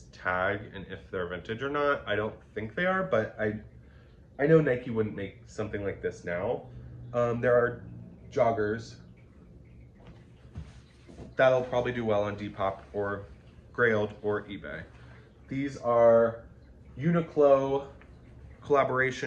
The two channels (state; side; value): identical; both; correlation 1.00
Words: tag and if they're vintage or not. I don't think they are, but I know Nike wouldn't make something like this now. There are joggers. That'll probably do well on Depop or Grailed or eBay. These are Uniqlo